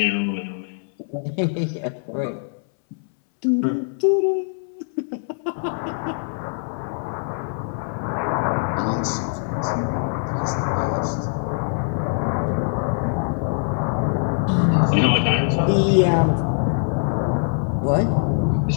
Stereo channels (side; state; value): right; silent; 64 dB below the other